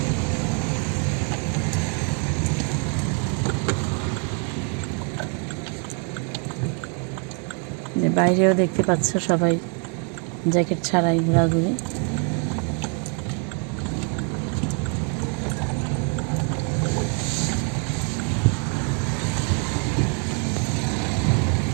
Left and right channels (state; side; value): quieter; left; 39.0 dB